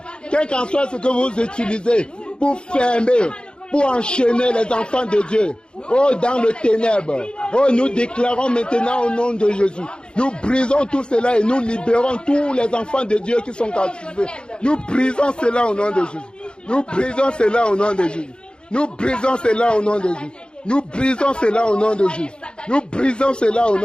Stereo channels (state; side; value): late; right; 0.052 ms